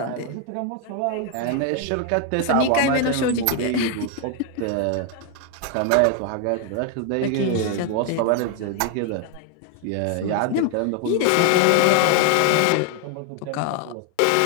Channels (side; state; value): both; different; correlation 0.01